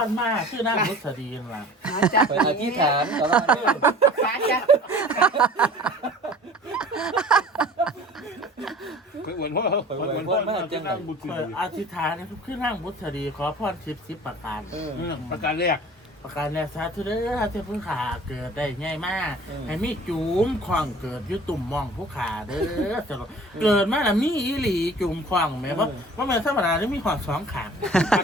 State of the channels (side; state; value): both; normal; correlation 0.45